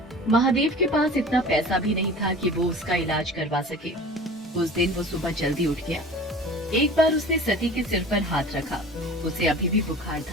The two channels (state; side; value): normal; both; correlation 0.40